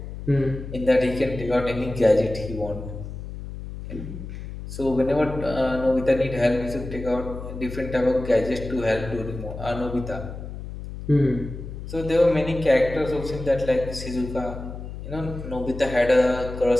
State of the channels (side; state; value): left; noise; hum, 10 dB below the sound